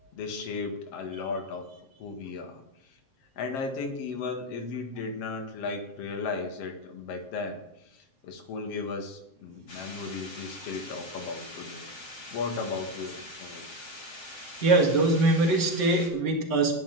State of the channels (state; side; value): late; right; 7.6 ms